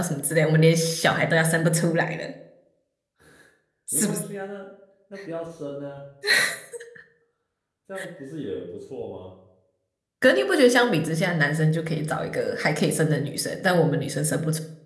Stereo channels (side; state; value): both; identical; correlation 1.00